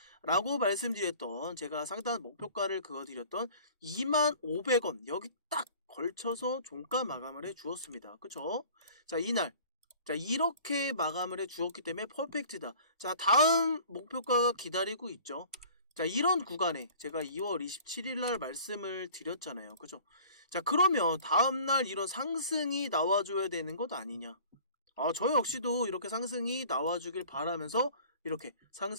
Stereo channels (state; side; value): inverted; both; correlation -0.47